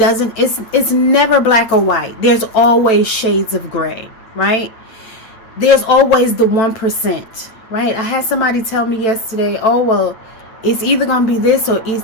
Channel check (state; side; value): late; right; 9.0 ms